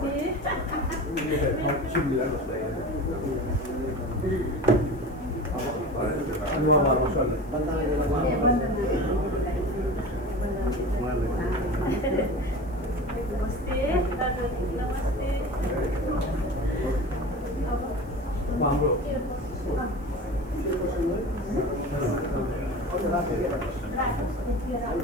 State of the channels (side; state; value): left; noise; hiss, 30 dB below the sound